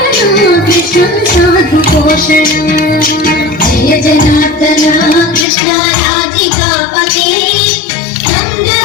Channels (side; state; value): right; drops out; at 5.5 s